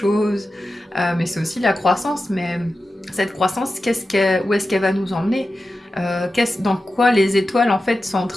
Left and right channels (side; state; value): both; normal; correlation 0.92